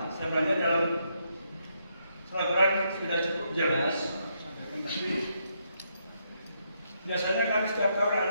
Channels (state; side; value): inverted; both; correlation -0.77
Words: sebenarnya dalam selebaran sudah cukup jelas. Tapi biasanya kan setiap tahun